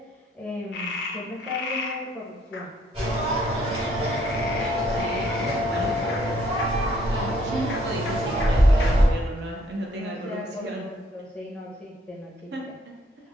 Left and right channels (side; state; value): both; normal; correlation 0.66